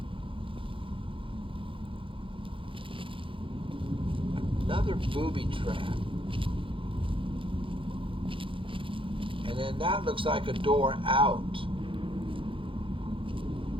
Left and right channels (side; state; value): left; late; 0.25 ms